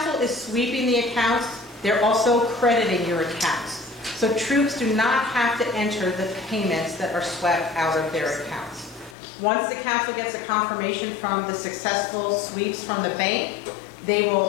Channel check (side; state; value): right; drops out; at 9.2 s